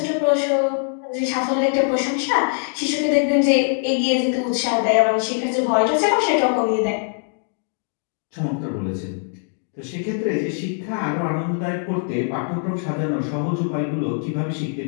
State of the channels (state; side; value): silent; right; 59 dB below the other